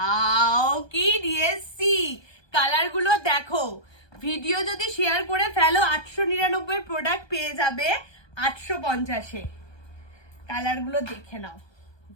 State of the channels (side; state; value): right; late; 1.2 ms